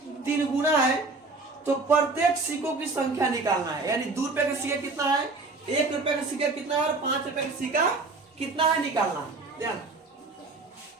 3 गुना है। तो प्रत्येक सिक्कों की संख्या निकालना है। यानी 2 रुपया का सिक्का कितना है, 1 रुपया का सिक्का कितना है और 5 रुपया का सिक्का कितना है, निकालना है। ध्यान,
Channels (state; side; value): quieter; left; 3.6 dB